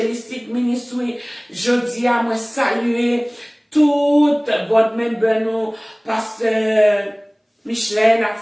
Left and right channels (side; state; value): both; identical; correlation 1.00